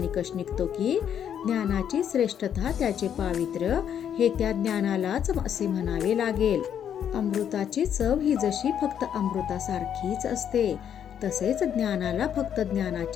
निघतो की ज्ञानाची श्रेष्ठता, त्याचे पावित्र्य हे त्या ज्ञानालाच असे म्हणावे लागेल. अमृताची चव ही जशी फक्त अमृतासारखीच असते तसेच ज्ञानाला फक्त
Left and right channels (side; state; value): right; quieter; 9.0 dB